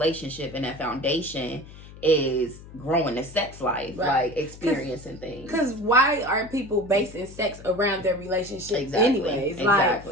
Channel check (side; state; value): left; noise; hum, 17 dB below the sound